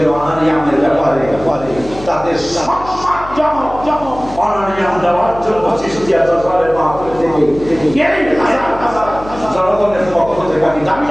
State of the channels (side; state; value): left; noise; hum, 15 dB below the sound